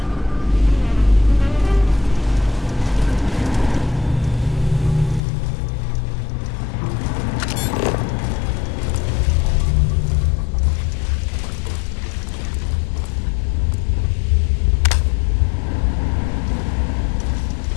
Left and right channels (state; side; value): drops out; right; at 5.2 s